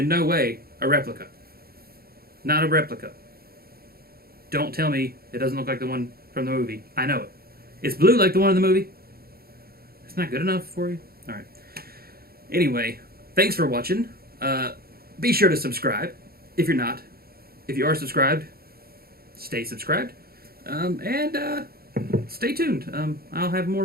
no way a replica. Not a replica. Don't tell me it doesn't look like the one from the movie. I know it. It's blue like the one in the movie. It's not good enough for you? Alright. Anyway, thanks for watching. Be sure to subscribe if you're not. If you are subscribed, stay subscribed. And stay tuned. I'll have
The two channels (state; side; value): late; left; 0.44 ms